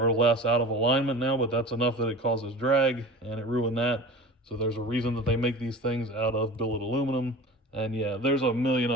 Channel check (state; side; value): normal; both; correlation 0.37